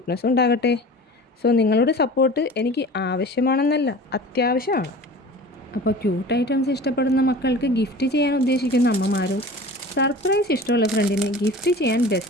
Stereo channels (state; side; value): normal; both; correlation 0.39